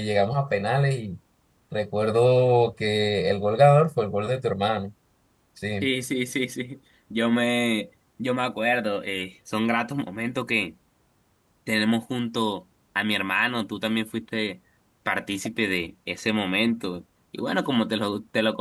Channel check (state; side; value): identical; both; correlation 1.00